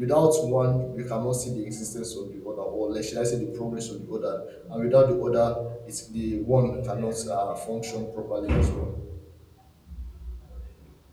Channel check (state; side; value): identical; both; correlation 1.00